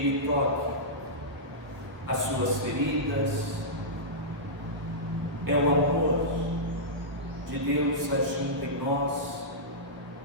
toque as suas feridas, é o amor de Deus agindo em nós,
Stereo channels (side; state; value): left; late; 1.2 ms